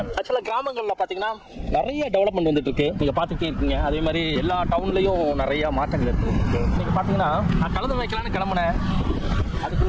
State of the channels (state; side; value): identical; both; correlation 1.00